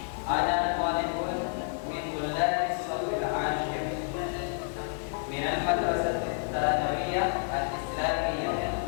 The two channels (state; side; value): silent; right; 55 dB below the other